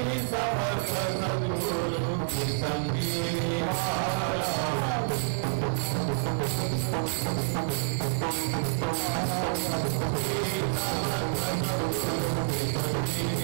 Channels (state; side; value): silent; left; 59 dB below the other